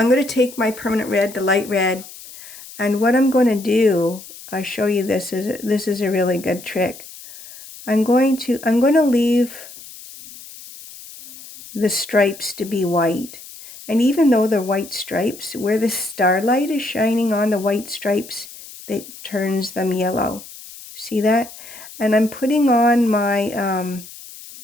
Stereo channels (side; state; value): left; noise; hiss, 17 dB below the sound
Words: going to take my permanent red, the light red, and what I'm going to do, I'll show you this is a really good trick. I'm going to leave the stripes to be white. And even though they're white stripes, where the starlight is shining on the white stripes, that turns them yellow. See that? And I'm putting on my